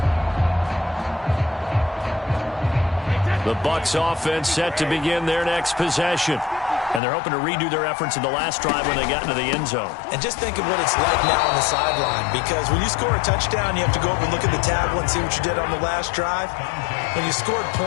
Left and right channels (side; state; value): right; drops out; at 7.0 s